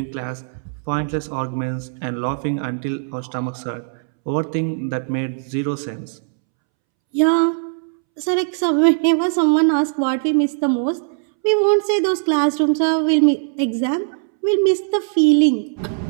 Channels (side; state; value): left; silent; 66 dB below the other